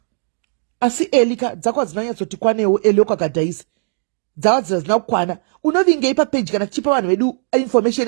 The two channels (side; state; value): left; silent; digital silence